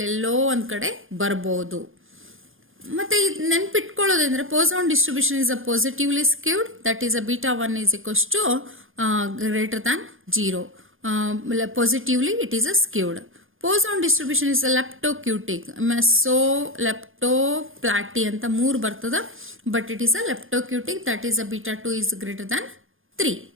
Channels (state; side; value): late; left; 0.59 ms